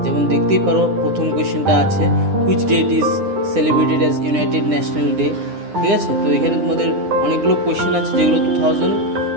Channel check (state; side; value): late; left; 9.9 ms